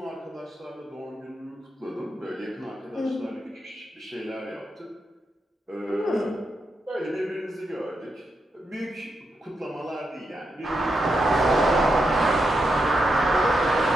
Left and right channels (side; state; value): both; normal; correlation 0.84